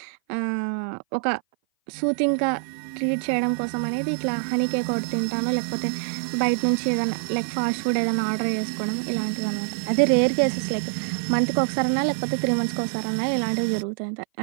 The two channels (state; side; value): silent; left; 57 dB below the other